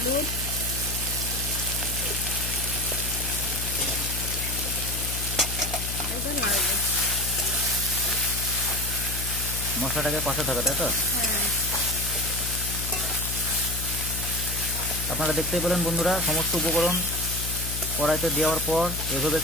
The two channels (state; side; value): noise; left; hum, 6 dB below the sound